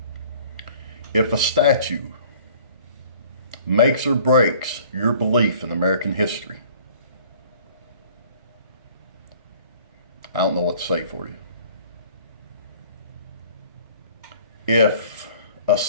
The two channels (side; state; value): both; inverted; correlation -0.52